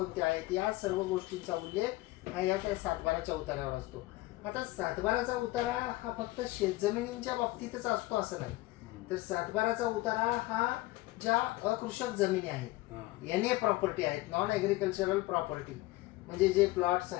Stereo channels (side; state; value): right; quieter; 19.2 dB